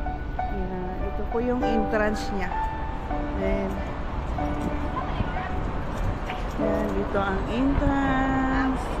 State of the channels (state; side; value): identical; both; correlation 1.00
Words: Yan. Ito po yung entrance niya. Then yan, dito ang entrance.